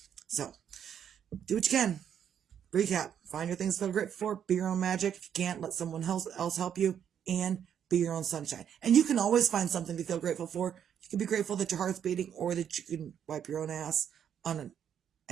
So, do what you can. Recap. Find your things to feel grateful for. Be your own magic. If you can't, let someone else help you. And be your own sunshine. And you can always find something to feel grateful for. You can be grateful that your heart's beating or that you can wipe your own ass on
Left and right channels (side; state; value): left; quieter; 8.8 dB